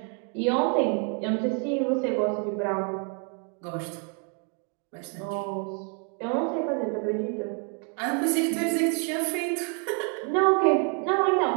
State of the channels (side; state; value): left; quieter; 39.3 dB